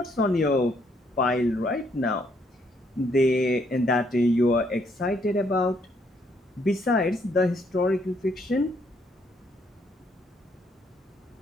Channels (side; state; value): both; normal; correlation 0.71